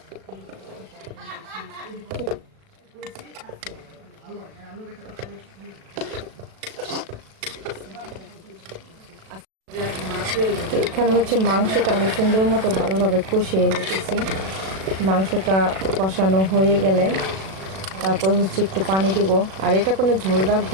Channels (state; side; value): late; left; 37 ms